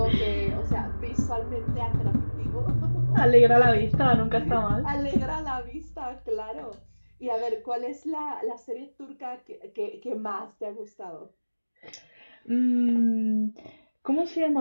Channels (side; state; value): both; inverted; correlation -1.00